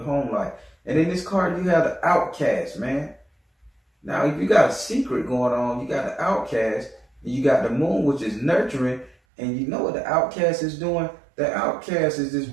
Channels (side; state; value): left; drops out; at 9.2 s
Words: life. And in this card, you have the outcast, man. Now, if you got a secret going on, you got the outcast, and you got the moon, which is nurturing, and you know what the outcast is doing? The outcast is this